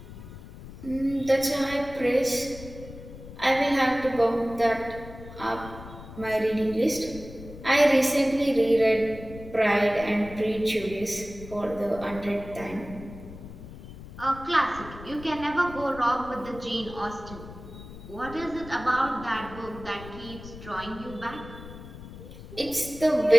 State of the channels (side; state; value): left; noise; rumble, 14 dB below the sound